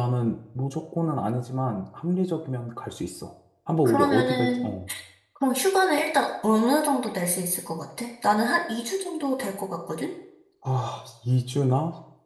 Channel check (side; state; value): both; identical; correlation 1.00